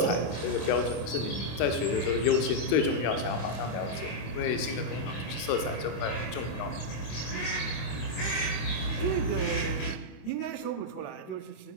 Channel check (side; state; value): right; late; 25 ms